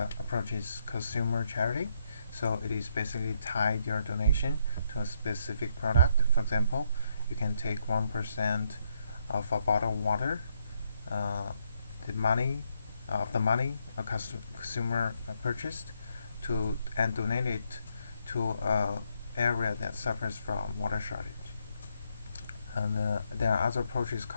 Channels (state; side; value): inverted; both; correlation -0.76